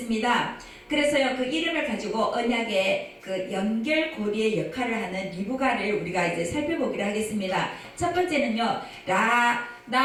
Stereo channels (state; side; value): identical; both; correlation 1.00